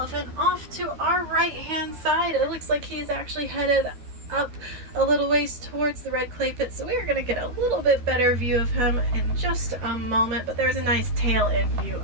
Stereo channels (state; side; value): late; left; 12 ms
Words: off to our right-hand side. It looks like he's actually headed up a little ways towards the red clay pit, so we are going to get a little bit better view of him in just a moment, but there's a nice tail end view